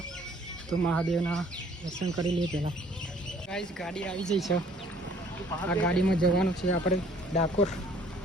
તો મહાદેવના દર્શન કરી લઈએ પહેલાં. ગાઈસ ગાડી આવી જઈ છે, આ ગાડીમાં જવાનું છે આપણે ડાકોર.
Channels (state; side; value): normal; both; correlation 0.58